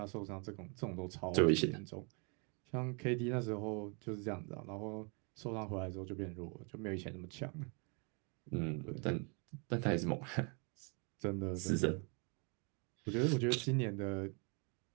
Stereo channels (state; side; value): quieter; left; 35.1 dB